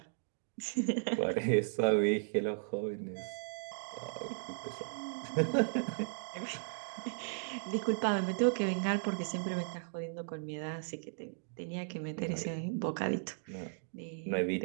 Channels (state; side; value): silent; left; digital silence